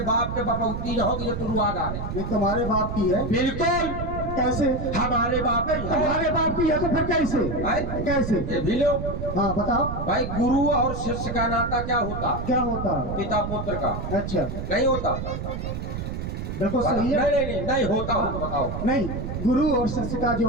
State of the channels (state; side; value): noise; right; rumble, 5 dB below the sound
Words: बाप के बपौती न होगी तो तुरुआ डाले। ये तुम्हारे बाप की है? बिल्कुल। कैसे? हमारे बाप है। तुम्हारे बाप की है तो फिर कैसे? कैसे? ये भी लो। हाँ बताओ भाई, गुरु और शिष्य का नाता क्या होता? क्या होता? पिता पुत्र का। अच्छा, नहीं होता? देखो सही है। नहीं होता हो तो बताओ। नहीं, गुरु और शिष्य का